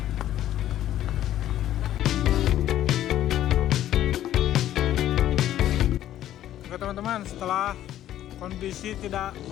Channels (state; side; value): quieter; right; 12.3 dB